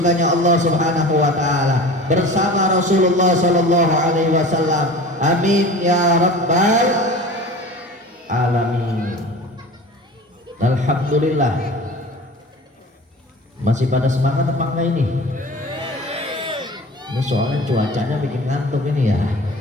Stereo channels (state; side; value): normal; both; correlation 0.37